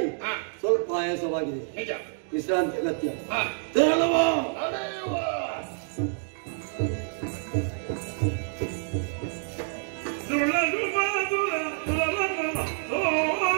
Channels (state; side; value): silent; left; digital silence